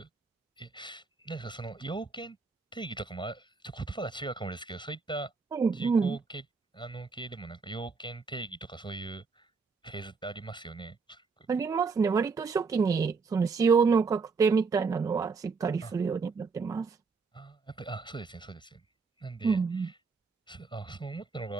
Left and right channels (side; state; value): left; quieter; 4.8 dB